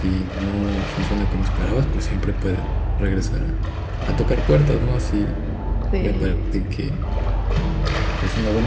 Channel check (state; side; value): identical; both; correlation 1.00